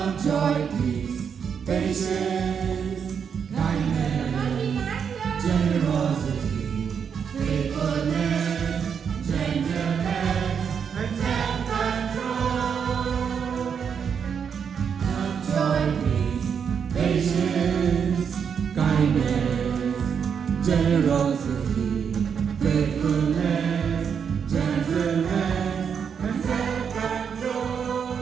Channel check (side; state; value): left; quieter; 7.1 dB